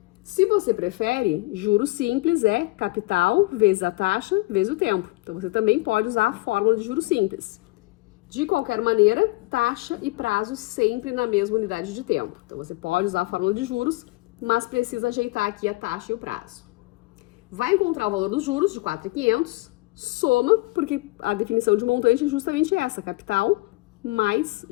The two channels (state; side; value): quieter; right; 22.9 dB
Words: Se você prefere, juros simples é capital vezes a taxa vezes o tempo. Então, você também pode usar a fórmula de juros simples. De qualquer maneira, taxa e prazo sempre na mesma unidade de tempo. Então, você pode usar a fórmula de juros, mas precisa ajeitar aqui a taxa e o prazo. Vai encontrar o valor dos juros de 4.500, soma, porque a definição de montante é justamente essa, capital mais